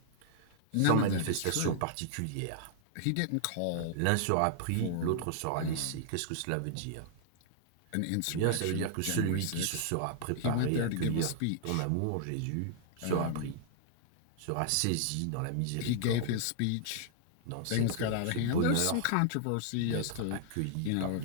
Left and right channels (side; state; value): both; different; correlation -0.01